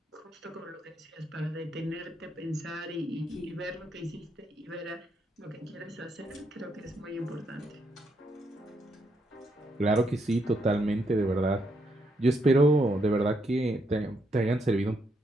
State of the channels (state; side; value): normal; both; correlation 0.77